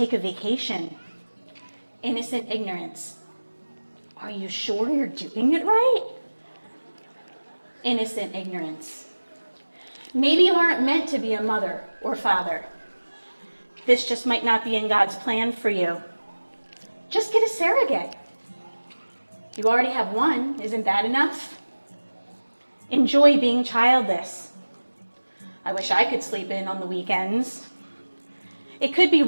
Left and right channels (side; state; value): both; inverted; correlation -1.00